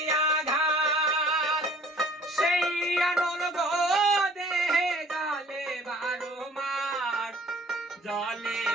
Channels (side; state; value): both; normal; correlation 0.53